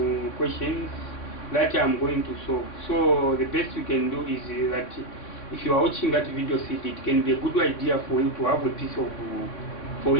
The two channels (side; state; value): right; late; 3.6 ms